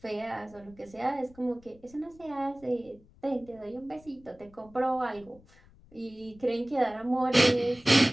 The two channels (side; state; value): left; noise; rumble, 26 dB below the sound